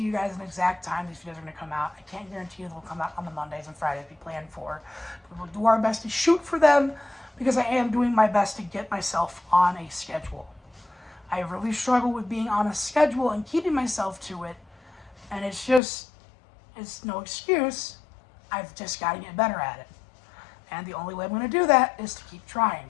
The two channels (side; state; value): right; drops out; at 15.8 s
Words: you guys an exact time these videos are going to come out. I can't guarantee you they'll come out on the Mondays and Fridays we planned for. But we'll do our best to shoot for them because I am doing my best to get myself on a schedule. I really struggle with being on a schedule and keeping myself to it. And it's no excuse. I've just got to get better at it. And the only way I'm going to do that is to keep